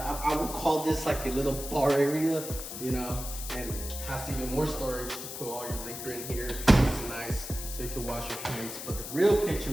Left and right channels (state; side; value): noise; left; hiss, 8 dB below the sound